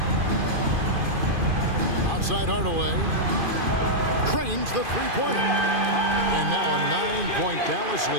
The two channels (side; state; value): left; late; 2.5 ms